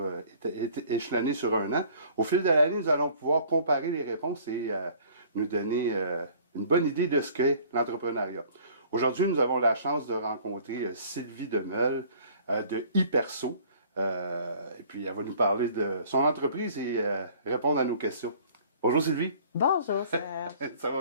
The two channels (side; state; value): both; inverted; correlation -0.52